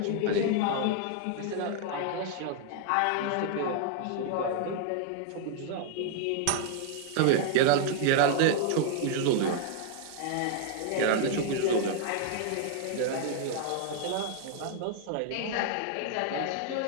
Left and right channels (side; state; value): both; different; correlation 0.00